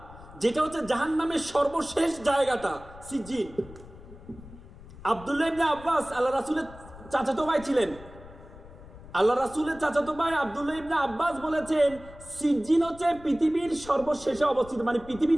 যেটা হচ্ছে জাহান্নামের সর্বশেষ জায়গাটা সিজ্জিন। আব্দুল্লাহ ইবনে আব্বাস আল্লাহ রাসূলের চাচাতো ভাই ছিলেন। আল্লাহ রাসূলের চাচাতো ভাই আব্দুল্লাহ ইবনে আব্বাস বলেছেন, সিজ্জিন হচ্ছে পৃথিবীর সর্বশেষে অবস্থিত, মানে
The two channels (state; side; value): noise; left; rumble, 18 dB below the sound